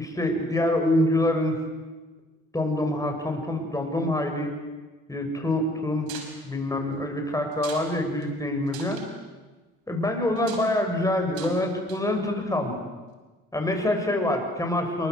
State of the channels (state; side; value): normal; both; correlation 0.58